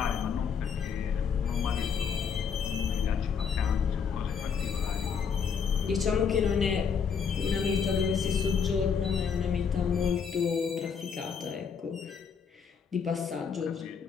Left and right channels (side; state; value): right; quieter; 6.5 dB